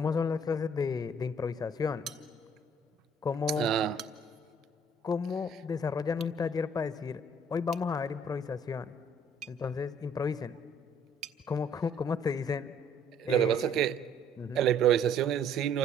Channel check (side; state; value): both; normal; correlation 0.60